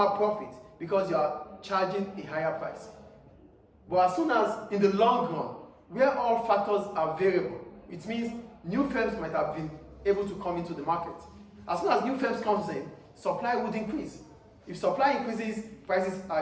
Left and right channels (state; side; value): identical; both; correlation 1.00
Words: profit because you are charging a higher price. But as soon as in the long run, where all factors are variable, it means new firms might have been able to come into the market. As soon as new firms comes in, supply would increase. If supply increases, prices